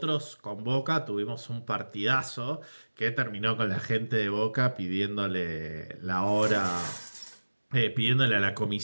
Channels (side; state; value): both; inverted; correlation -1.00